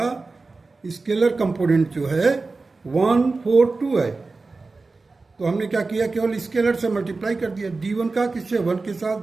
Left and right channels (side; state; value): left; quieter; 3.8 dB